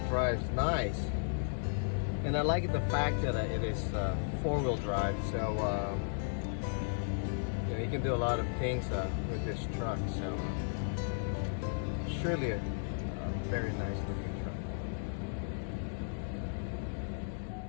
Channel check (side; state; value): right; silent; digital silence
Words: nice. And I like the fact that it is four-wheel drive, so you can do a lot of things with this truck. So surely a very nice looking truck.